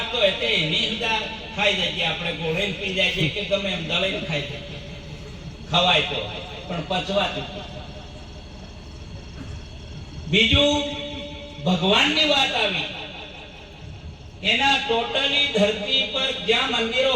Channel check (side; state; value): both; identical; correlation 1.00